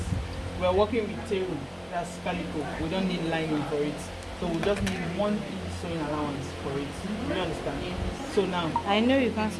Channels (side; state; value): both; identical; correlation 1.00